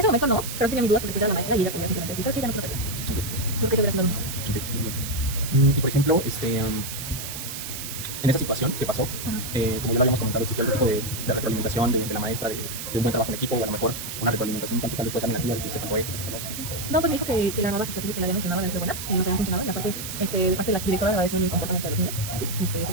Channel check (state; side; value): noise; right; hiss, 7 dB below the sound